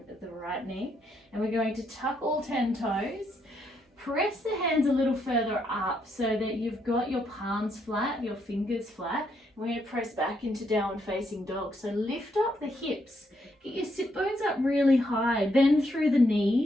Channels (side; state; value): both; normal; correlation 0.76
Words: the right knee. And we're going to tuck all 10 toes. Press the hands a little further up so that you've got your palms flat, your fingers flat. We're going to press back into downward facing dog. So lift up the hips. Get your sit bones up really high. Bend through the